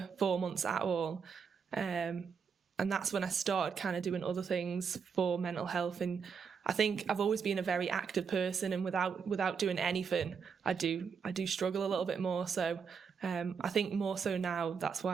4 months at all, and that's when I started kind of doing other things for mental health. And I think I've always been a very active person, and without doing anything, I do struggle a little bit more. So I think more so now, that's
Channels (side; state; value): left; quieter; 6.2 dB